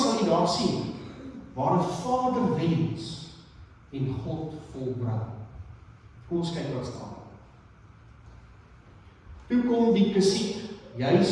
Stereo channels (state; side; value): identical; both; correlation 1.00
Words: jy daar sien, waar 'n vader wens en God volbring. Kom ons kyk wat staan. Toe kom die Kesiet